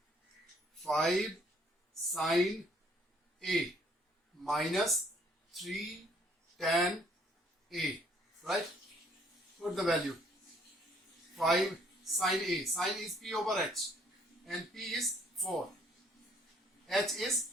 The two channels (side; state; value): both; normal; correlation 0.63